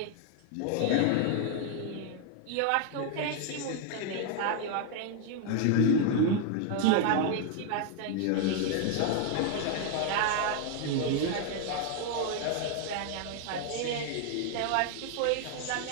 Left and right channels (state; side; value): different; both; correlation 0.00